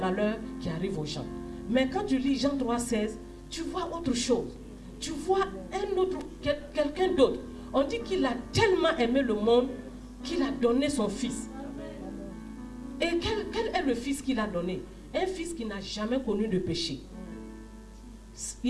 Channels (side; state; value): both; identical; correlation 1.00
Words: qui arrivent aux gens. Mais quand tu lis Jean 3,16, tu vois autre chose. Tu vois quelqu'un d'autre. On dit qu'il a tellement aimé le monde qu'il a donné son fils. Et quel est le fils qu'il a donné? Un fils qui n'a jamais connu de péché.